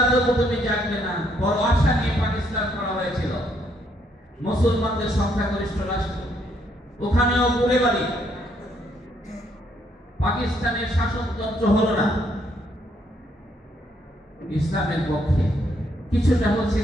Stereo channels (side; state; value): both; normal; correlation 0.71